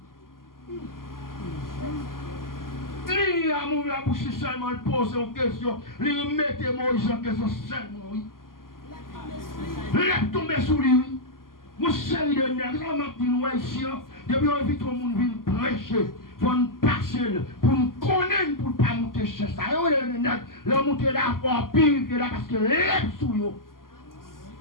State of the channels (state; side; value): late; right; 0.91 ms